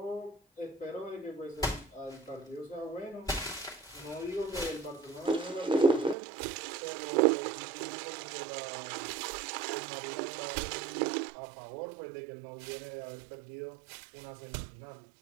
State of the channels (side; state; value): left; drops out; at 6.2 s